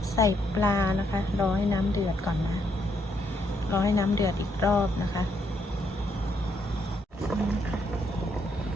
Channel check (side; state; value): both; normal; correlation 0.75